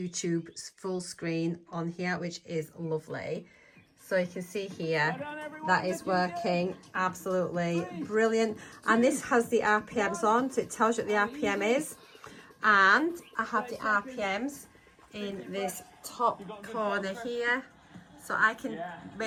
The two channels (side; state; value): both; identical; correlation 1.00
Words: full screen on here, which is lovely. So you can see here, that is working absolutely brilliant. And this has the RPMs on, so it tells you what the RPM is. And I have the RPMs in this top corner here. So I can